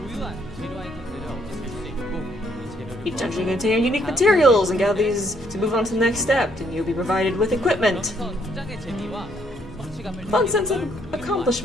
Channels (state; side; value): normal; both; correlation 0.69